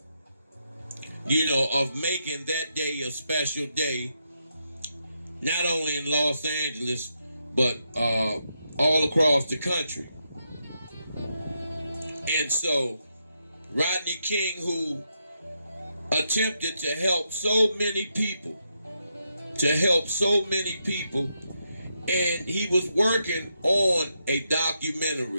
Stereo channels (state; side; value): inverted; both; correlation -0.82